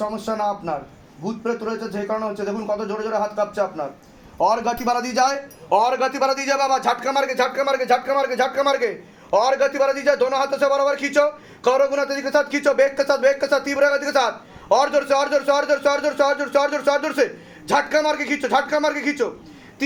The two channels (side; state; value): both; identical; correlation 1.00